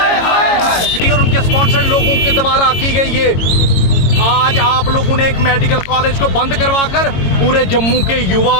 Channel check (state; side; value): late; right; 22 ms